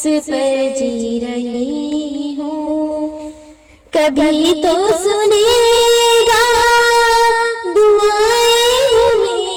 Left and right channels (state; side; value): identical; both; correlation 1.00